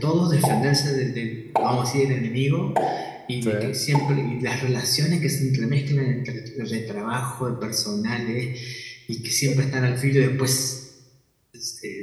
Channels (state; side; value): identical; both; correlation 1.00